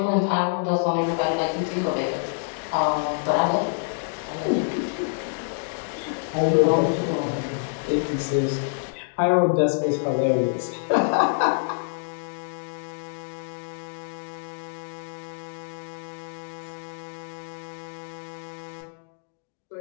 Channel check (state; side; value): silent; right; digital silence